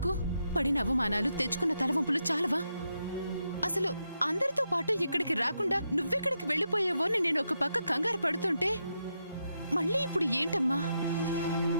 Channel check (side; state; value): both; inverted; correlation -0.84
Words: పడిన అవమానాలు, తెచ్చుకున్న తలవంపులు చాలవా? అసలు అందరితో పాటు ఇక్కడికి రాకుండా నువ్వెక్కడికి వెళ్ళిపోయావోని నేను ఒక పక్క కంగారు పడుతుంటే మళ్ళీ ఇప్పుడు ఏంటమ్మా?